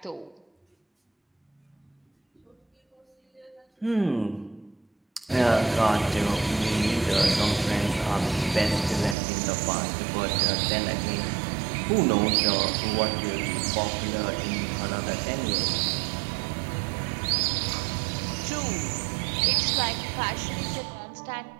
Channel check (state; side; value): drops out; left; at 9.2 s